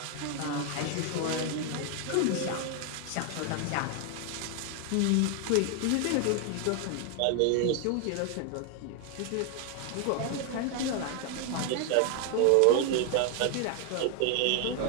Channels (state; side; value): different; both; correlation 0.01